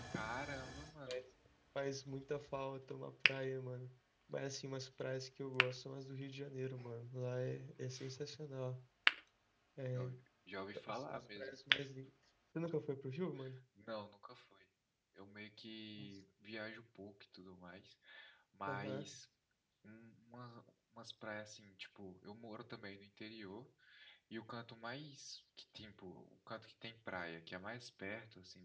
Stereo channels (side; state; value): both; identical; correlation 1.00